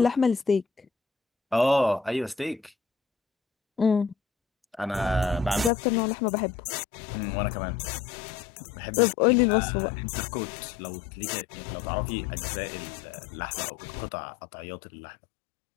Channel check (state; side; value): drops out; right; at 5.7 s